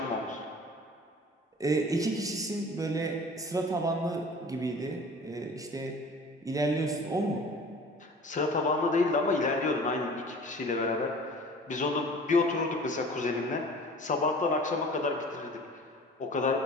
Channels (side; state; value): both; normal; correlation 0.44